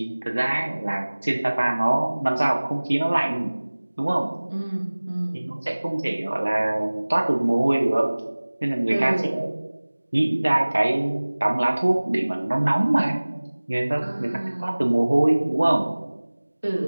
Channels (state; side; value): inverted; both; correlation -1.00